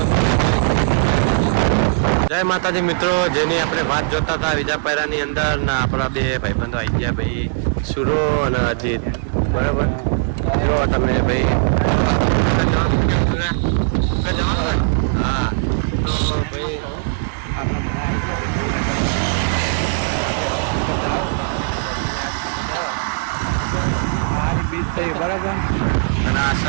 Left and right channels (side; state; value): left; silent; digital silence